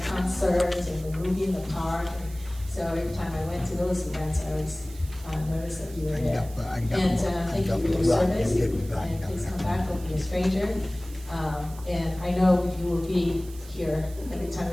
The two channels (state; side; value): noise; right; hiss, 20 dB below the sound